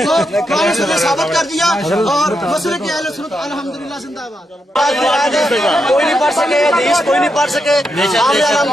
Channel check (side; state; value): both; normal; correlation 0.83